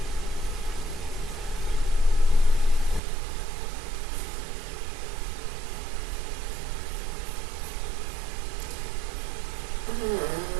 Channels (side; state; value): left; drops out; at 3.0 s